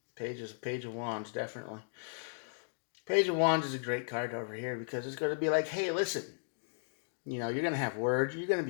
Page of Wands, definitely. Page of Wands is a great card over here because it's going to be like, hey, listen, you're going to have words. You're going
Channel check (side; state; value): right; silent; digital silence